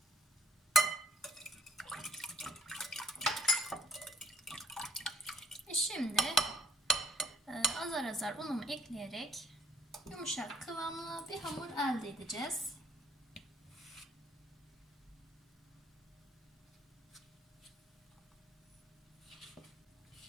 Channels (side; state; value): both; normal; correlation 0.62